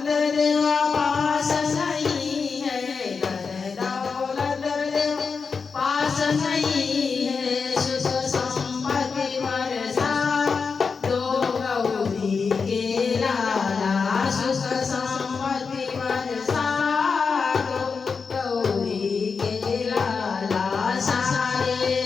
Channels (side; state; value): right; quieter; 5.2 dB